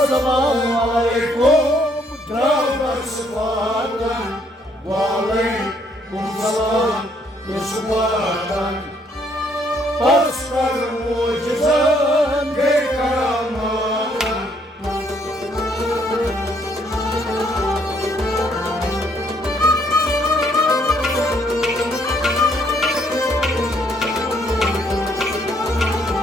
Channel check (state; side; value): normal; both; correlation 0.68